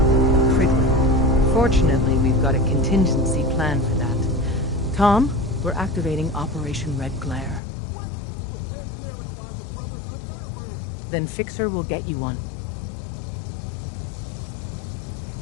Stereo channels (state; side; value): drops out; right; at 7.6 s